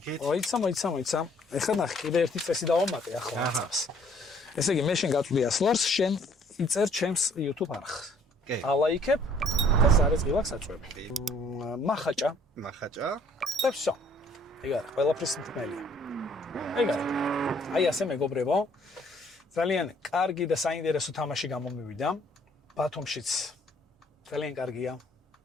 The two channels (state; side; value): normal; both; correlation 0.61